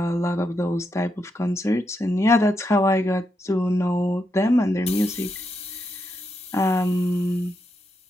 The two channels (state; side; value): normal; both; correlation 0.83